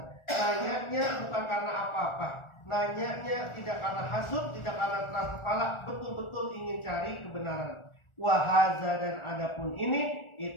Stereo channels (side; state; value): right; late; 1.4 ms